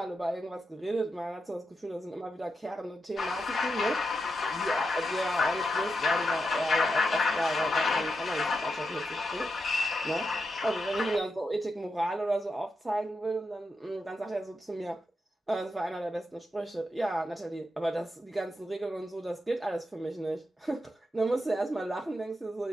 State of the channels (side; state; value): both; normal; correlation 0.86